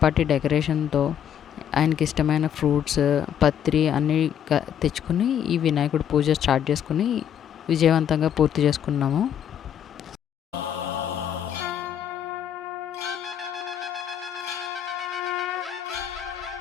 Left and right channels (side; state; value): right; quieter; 9.3 dB